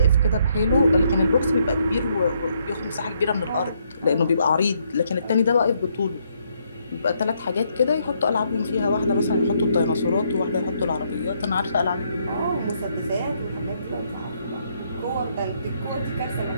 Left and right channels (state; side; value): inverted; both; correlation -0.73